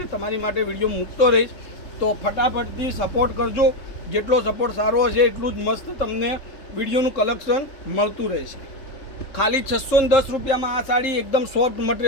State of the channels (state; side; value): late; right; 3.7 ms